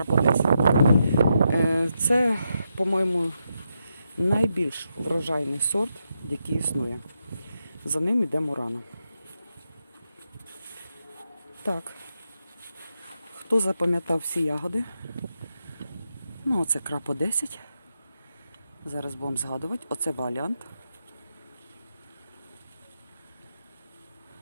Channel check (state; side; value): inverted; both; correlation -0.84